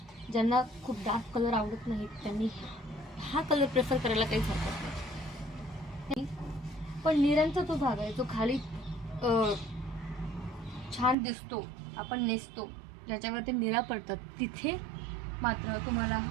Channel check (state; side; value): drops out; left; at 11.2 s